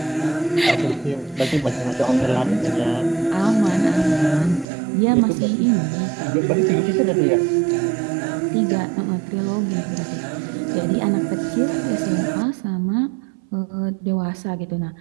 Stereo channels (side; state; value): left; drops out; at 4.7 s